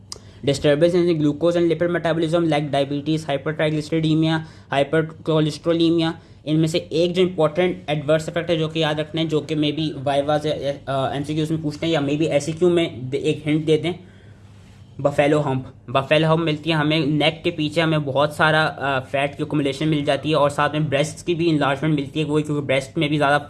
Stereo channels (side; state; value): both; identical; correlation 1.00